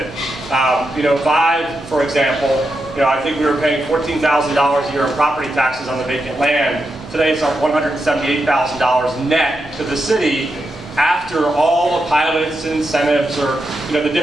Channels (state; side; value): normal; both; correlation 0.86